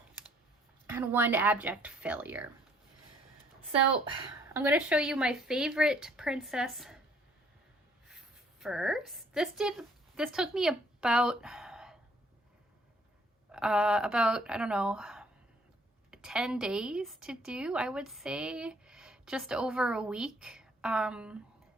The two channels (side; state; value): both; normal; correlation 0.63